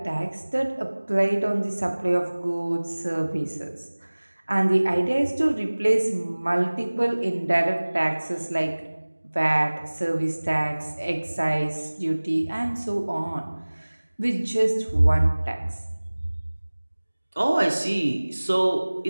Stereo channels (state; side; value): inverted; both; correlation -1.00